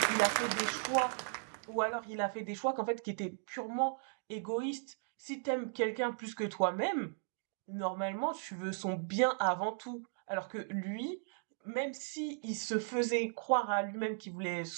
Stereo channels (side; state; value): left; silent; digital silence